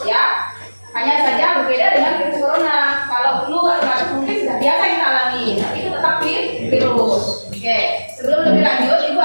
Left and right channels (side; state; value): both; inverted; correlation -1.00